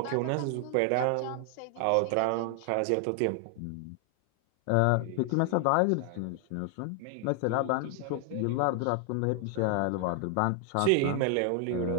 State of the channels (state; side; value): different; both; correlation 0.00